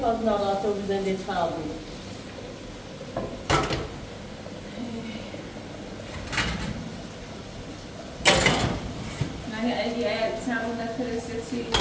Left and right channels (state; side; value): identical; both; correlation 1.00